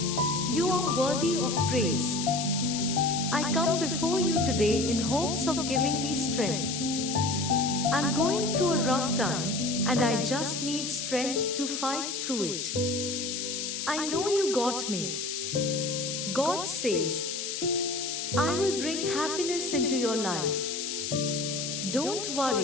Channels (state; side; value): noise; left; hiss, 4 dB below the sound